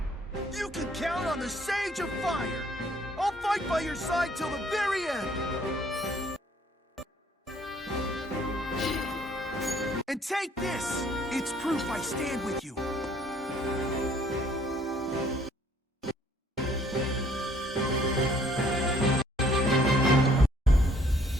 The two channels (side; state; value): both; normal; correlation 0.61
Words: You can count on the Sage of Fire. I'll fight by your side till the very end. And take this. It's proof I stand with you.